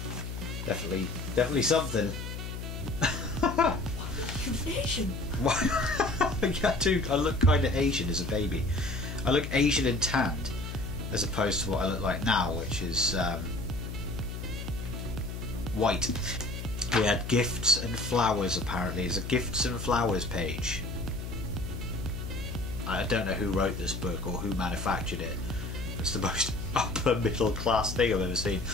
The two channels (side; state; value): left; noise; hum, 7 dB below the sound